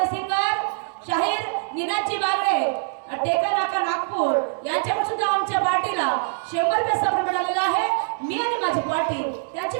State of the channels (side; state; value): left; silent; 63 dB below the other